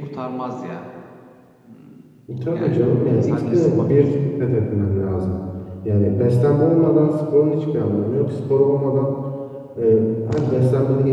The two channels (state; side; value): identical; both; correlation 1.00